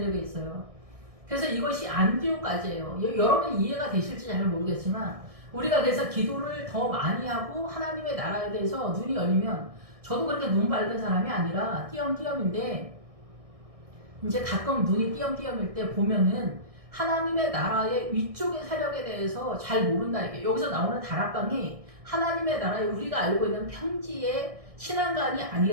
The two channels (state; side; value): late; left; 1.6 ms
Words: 있어요. 그래서 이것이 안디옥까지예요. 여러분 이해가 되실지 잘 모르겠지만 우리가 그래서 기도를 더 많이 하고 하나님의 나라에 대해서 눈이 열리면, 저도 그렇게 눈 밝은 사람이 아니라 띄엄띄엄인데 이제 가끔 눈이 띄엄띄엄일 때 보면은 하나님의 나라의 위쪽의 세력에 대해서 잘 모른다. 이게 여기서 나오는 다락방이 하나님의 나라에 우리가 알고 있는 평지의 신앙관이